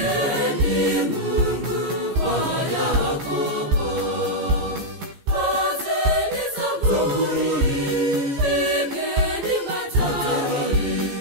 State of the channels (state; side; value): late; left; 14 ms